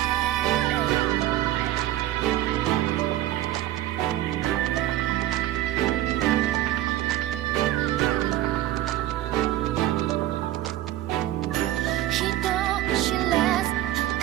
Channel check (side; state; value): left; quieter; 14.3 dB